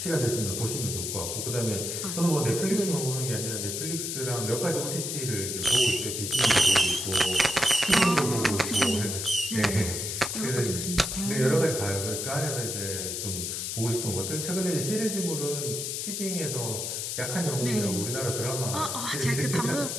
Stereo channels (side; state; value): left; noise; hiss, 3 dB below the sound